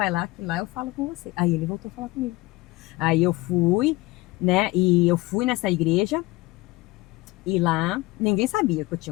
lá, que lá eu falo com você. Aí ele voltou a falar comigo. Aí eu fui, né, e eu fui nessa igreja, e lá ninguém sabia que eu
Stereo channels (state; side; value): quieter; right; 20.8 dB